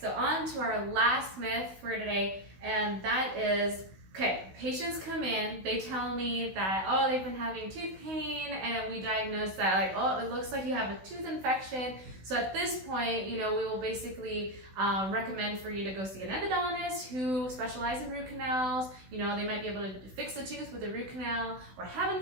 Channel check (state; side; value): late; left; 16 ms